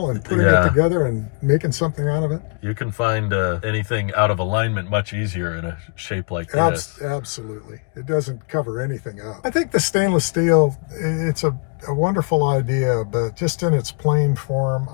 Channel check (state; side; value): quieter; right; 38.3 dB